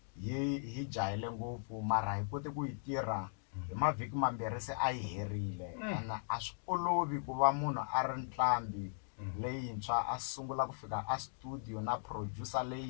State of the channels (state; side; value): silent; right; digital silence